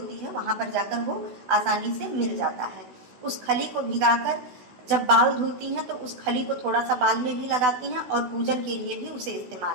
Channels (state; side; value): late; left; 16 ms